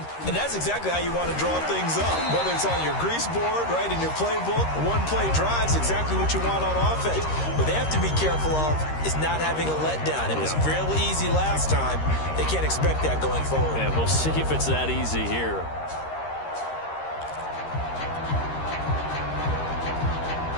And that's exactly how you want to draw things up. Whether it's on your grease board, right, in your playbook, one-play drive's exactly what you want on offense. What they have to be careful of is not having a letdown. It was real easy last time. They can't expect that going forward. And we'll see if it's that easy here.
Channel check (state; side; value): late; right; 13 ms